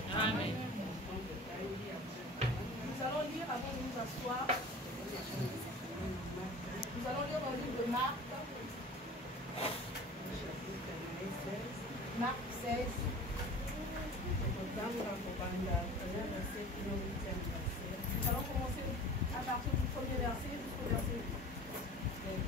Amen. Nous allons lire avant de nous asseoir. Nous allons lire dans le livre de Marc. Marc 16. Nous allons commencer à partir du premier verset jusqu'au verset 8.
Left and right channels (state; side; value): normal; both; correlation 0.40